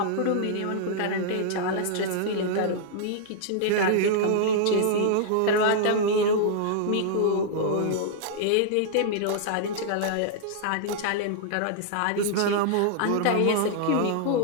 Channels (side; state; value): both; different; correlation -0.01